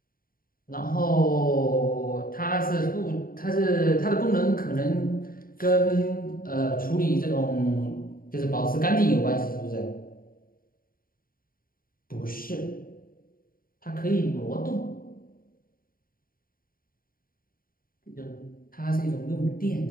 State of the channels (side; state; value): right; late; 0.42 ms